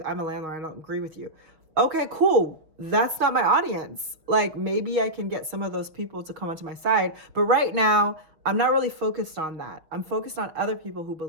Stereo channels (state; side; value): late; left; 6.3 ms